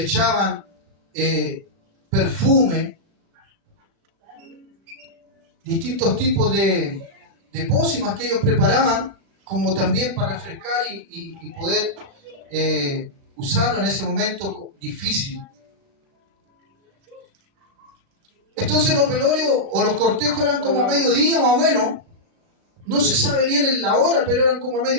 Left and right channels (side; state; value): left; late; 36 ms